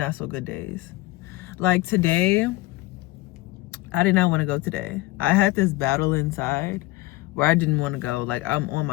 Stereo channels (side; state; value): right; quieter; 19.6 dB